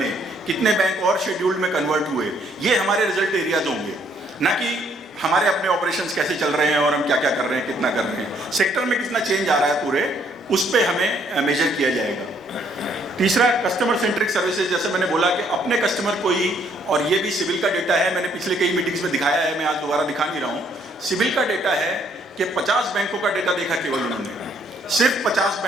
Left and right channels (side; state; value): both; normal; correlation 0.67